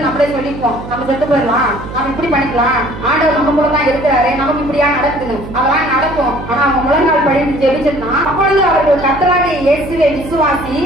நம்மளே சொல்லிப்போம், நம்ம செத்து போயிடலாம், நம்ம இப்படி பண்ணிக்கலாம், ஆண்டவர் நம்ம கூட தான் இருக்கிறாரு, நமக்கு இப்படியா நடக்குது, அதெல்லாம் நடக்கும். ஆனா அவங்க முழங்கால் படித்து ஜெபிச்சிருந்தா, அப்பொழுது அவர்கள் கர்த்தராகிய இயேசுவை விசுவாசி,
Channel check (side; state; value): right; noise; hum, 12 dB below the sound